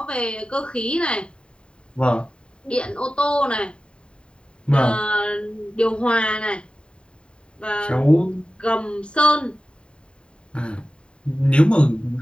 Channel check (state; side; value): late; right; 0.052 ms